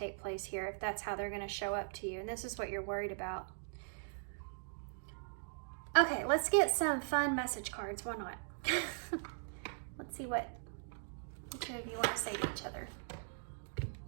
place here if that's how they're going to show up to you. And this is what you're worried about. Okay, let's get some fun message cards. Why not? Let's see what the two of you want to say to each other.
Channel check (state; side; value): silent; left; digital silence